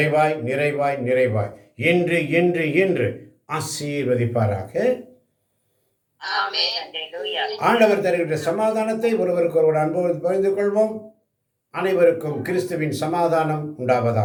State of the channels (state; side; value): identical; both; correlation 1.00